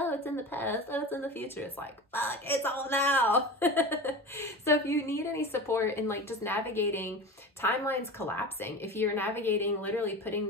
it's in the past, oh, it's in the future. It's like, fuck, it's all now. So if you need any support in like just navigating timelines collapsing, if you're navigating literally putting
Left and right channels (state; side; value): normal; both; correlation 0.30